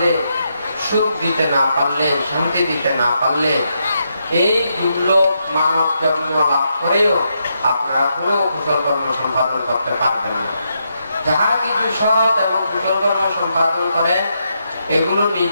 সুখ দিতে না পারলে, শান্তি দিতে না পারলে, এই দুর্লভ মানব জন্ম লাভ করেও আপনারা কোনো কুশল কর্ম সম্পাদন করতে পারবেন না। যাহা কিছু সৎ এবং কুশল কর্ম সম্পাদন করে, এগুলো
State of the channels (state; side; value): inverted; both; correlation -0.81